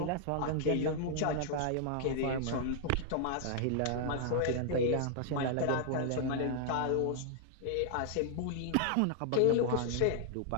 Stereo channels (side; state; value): both; different; correlation -0.01